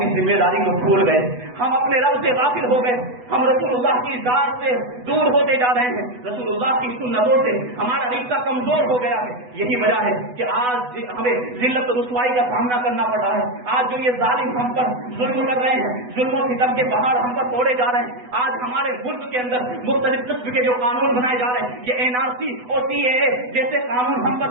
ذمہ داری کو بھول گئے, ہم اپنے رب سے غافل ہو گئے, ہم رسول اللہ کی ذات سے دور ہوتے جا رہے ہیں, رسول اللہ کی سنتوں سے ہمارا رشتہ کمزور ہو گیا ہے. یہی وجہ ہے کہ آج ہمیں ذلت و رسوائی کا سامنا کرنا پڑ رہا ہے. آج جو یہ ظالم ہم پر ظلم کر رہے ہیں, ظلم و ستم کے پہاڑ ہم پر توڑے جا رہے ہیں. آج ہمارے ملک کے اندر مختلف قسم کے جو قانون بنائے جا رہے ہیں, یہ NRC اور CAA جیسے قانون ہم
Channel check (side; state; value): left; late; 8.1 ms